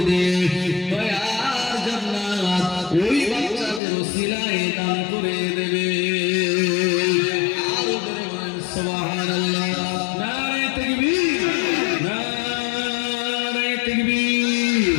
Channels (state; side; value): drops out; right; at 3.8 s